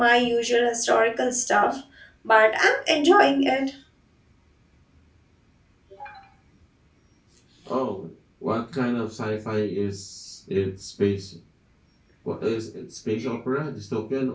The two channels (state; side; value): identical; both; correlation 1.00